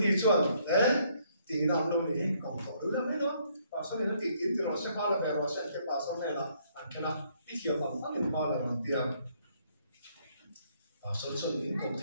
chuẩn đấy thì làm luôn thì còn tổ đối lắm đấy đó và sau này nó tiến thì nó sẽ hoa là về nó sẽ cái bà sau này là anh cái nào ít nhiều bằng phát triển hoa là bằng tiền và sau đó những công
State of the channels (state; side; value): inverted; both; correlation -0.68